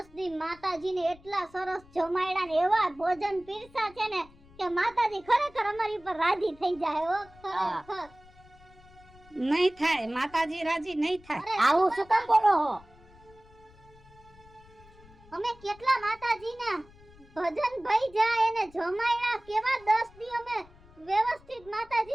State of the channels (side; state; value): left; noise; rumble, 25 dB below the sound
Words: દી માતાજીને એટલા સરસ જમાડ્યા ને એવા ભોજન પીરસા છે ને કે માતાજી ખરેખર અમારી ઉપર રાજી થઈ જાય હો ખરેખર. નહીં થાય, માતાજી રાજી નહીં થાય. આવું શું કામ બોલો હો? અમે કેટલા માતાજીના ભજન ભઈ જાય એને જમાડ્યા, કેવા 10 દી અમે વ્યવસ્થિત